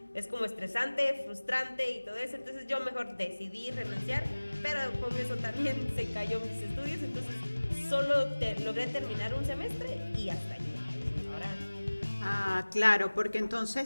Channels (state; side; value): inverted; both; correlation -1.00